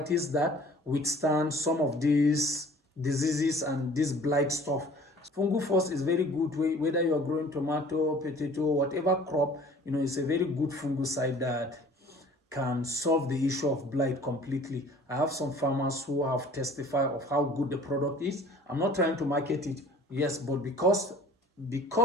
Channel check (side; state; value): both; normal; correlation 0.50